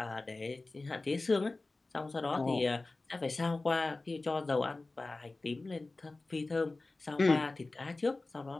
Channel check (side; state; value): right; quieter; 3.2 dB